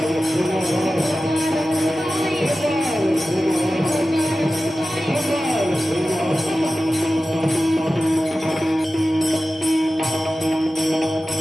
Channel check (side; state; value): both; normal; correlation 0.94